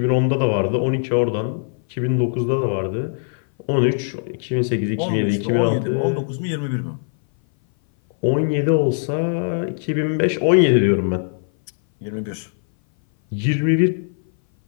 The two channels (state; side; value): silent; right; 59 dB below the other